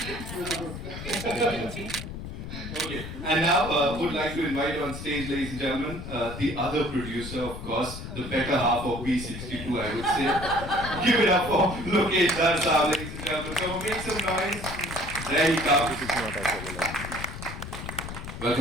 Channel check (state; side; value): noise; left; rumble, 9 dB below the sound